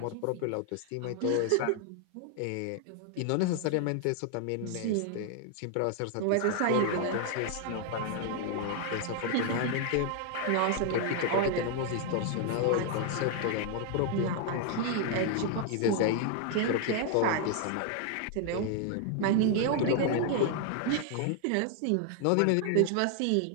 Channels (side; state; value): both; different; correlation 0.00